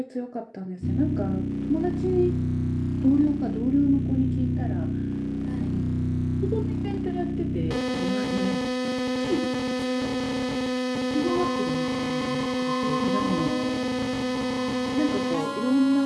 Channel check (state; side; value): identical; both; correlation 1.00